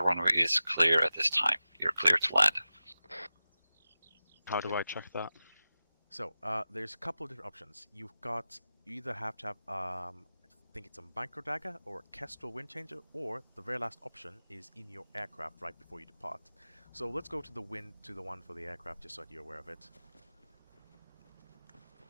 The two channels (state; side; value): inverted; both; correlation -0.95